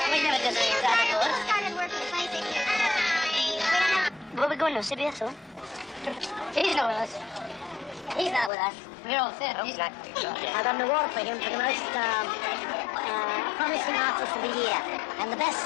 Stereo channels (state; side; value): drops out; right; at 8.5 s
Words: We never did that before. He started working 26 years ago. Where we going now, CBS, huh? He's not with us. He's not with us. We're all set. He's not. I got an award for him for the most promising artist of the year and the